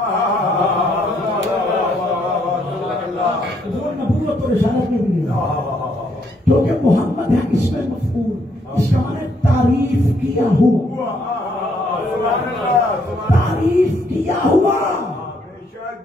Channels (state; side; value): normal; both; correlation 0.71